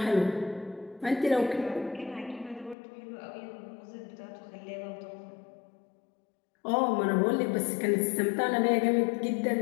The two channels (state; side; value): drops out; right; at 2.8 s